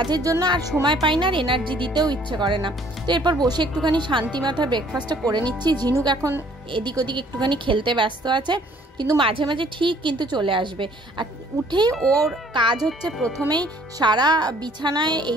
জন্য আর সময় পাই না, আর এনার্জি দিতেও ইচ্ছে করে না। তো এরপর বসে একটুখানি শান্তি মাথায় ব্রেকফাস্টটা করে নিচ্ছি। ঝিনুক এখন এদিক ওদিক একটুখানি খেলতে ব্যস্ত আছে, কিন্তু মাঝে মাঝে ঠিক কিন্তু চলে আসবে। আর উঠেই ওর কাজ হচ্ছে প্রথমেই সারা বিছানায়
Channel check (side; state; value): both; normal; correlation 0.59